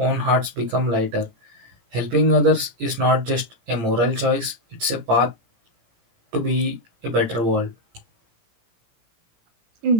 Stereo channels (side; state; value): left; late; 17 ms